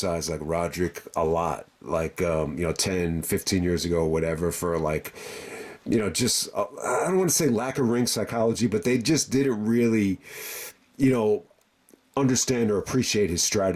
like Roderick a lot, like 10, 15 years ago, or whatever, for like, just I don't want to say lack of ring psychology, but they just didn't really, understand or appreciate his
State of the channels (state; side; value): identical; both; correlation 1.00